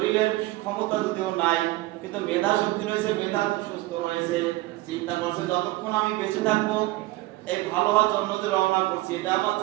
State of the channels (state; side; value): quieter; left; 19.0 dB